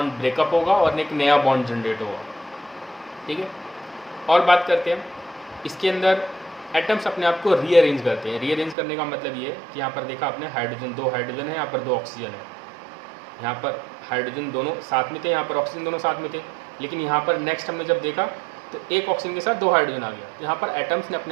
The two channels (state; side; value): drops out; left; at 8.8 s